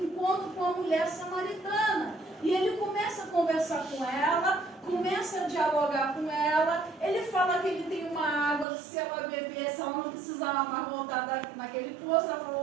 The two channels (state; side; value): drops out; left; at 8.7 s